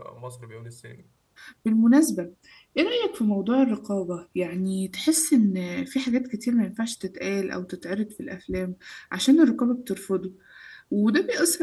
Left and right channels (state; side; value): identical; both; correlation 1.00